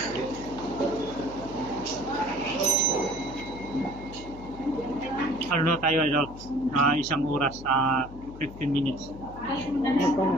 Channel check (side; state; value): left; noise; hum, 15 dB below the sound